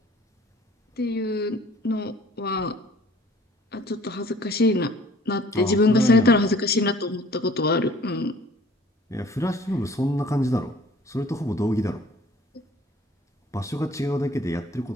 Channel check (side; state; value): both; normal; correlation 0.52